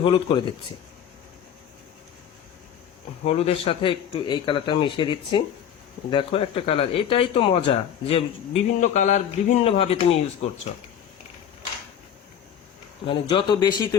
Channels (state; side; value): quieter; right; 9.1 dB